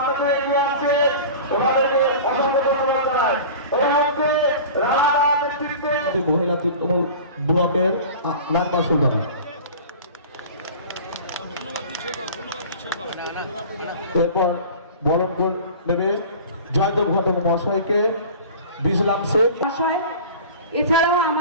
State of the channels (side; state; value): both; inverted; correlation -0.38